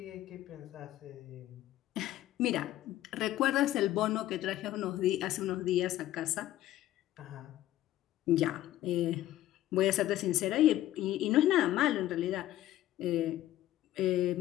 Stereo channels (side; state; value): right; quieter; 13.9 dB